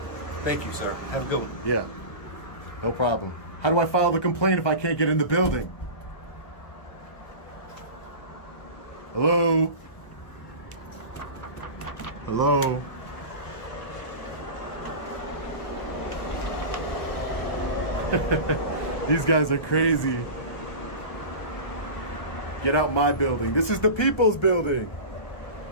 Thank you, sir. Have a good one. Yeah, no problem. How do I file the complaint if I can't get in the building? Hello? Hello? These guys are crazy. Get out my building. This is the people's building,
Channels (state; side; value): late; right; 1.2 ms